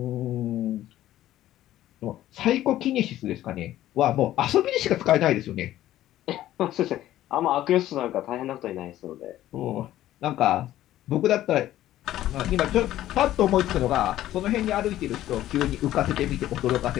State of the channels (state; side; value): quieter; right; 13.7 dB